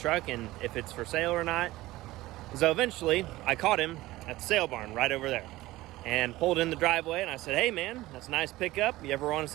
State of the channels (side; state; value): left; quieter; 17.8 dB